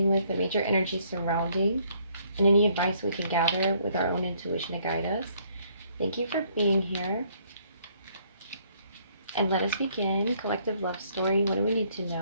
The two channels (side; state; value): both; inverted; correlation -0.66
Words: with, the major energy surrounding, and any advice we can gather with our own intuition to guide us. Thank you for being here. And let us begin. Collective love story. What do we need to